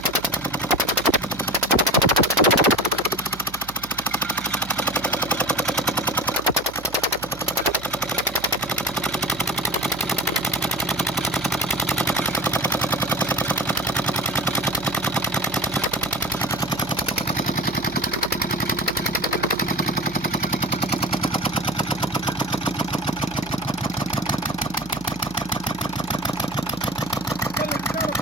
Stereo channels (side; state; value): right; noise; hum, 17 dB below the sound